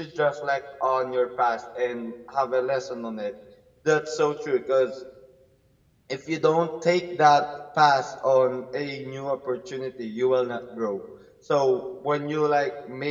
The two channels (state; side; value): identical; both; correlation 1.00